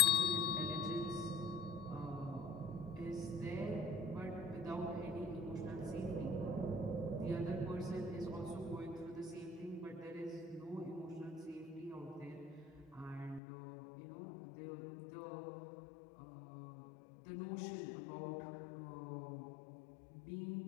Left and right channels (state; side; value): drops out; right; at 13.4 s